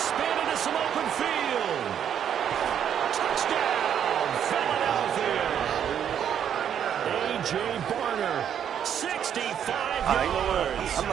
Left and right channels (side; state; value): left; quieter; 9.0 dB